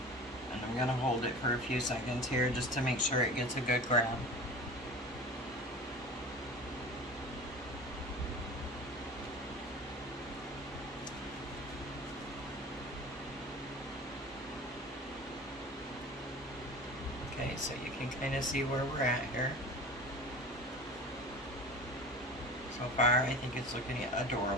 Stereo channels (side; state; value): both; normal; correlation 0.36